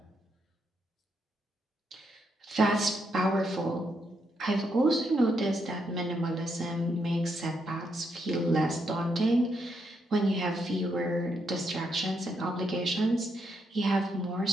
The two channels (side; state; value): both; normal; correlation 0.79